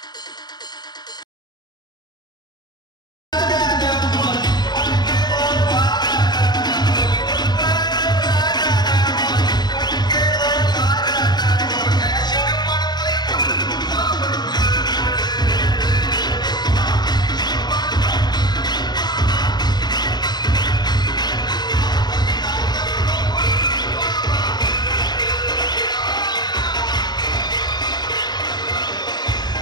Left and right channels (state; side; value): late; right; 0.20 ms